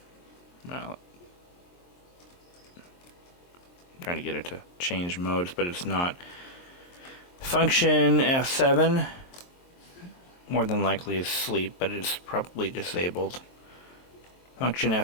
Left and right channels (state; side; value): late; right; 23 ms